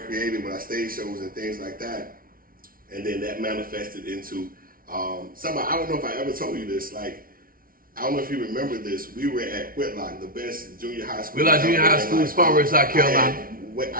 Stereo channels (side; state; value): left; late; 0.42 ms